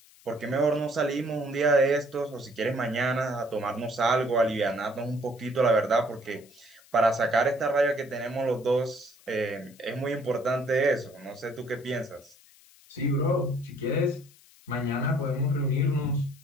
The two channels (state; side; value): noise; left; hiss, 26 dB below the sound